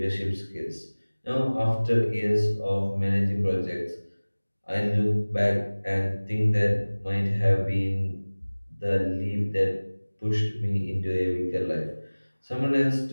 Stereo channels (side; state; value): both; inverted; correlation -1.00